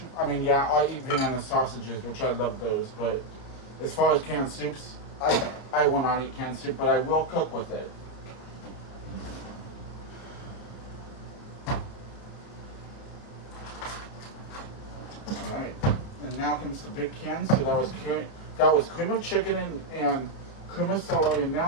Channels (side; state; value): right; late; 31 ms